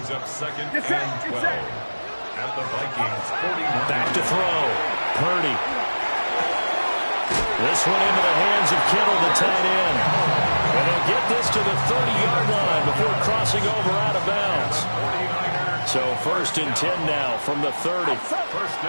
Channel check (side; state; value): both; inverted; correlation -1.00